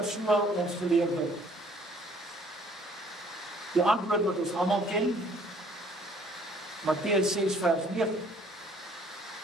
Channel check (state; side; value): normal; both; correlation 0.59